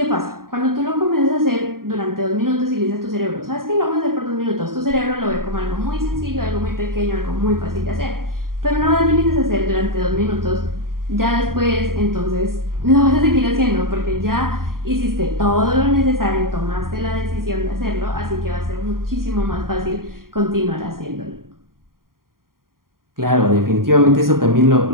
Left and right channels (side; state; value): left; late; 0.92 ms